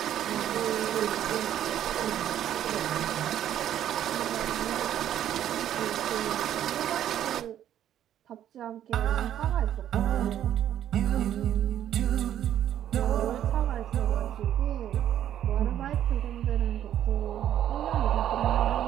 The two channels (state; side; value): quieter; left; 11.0 dB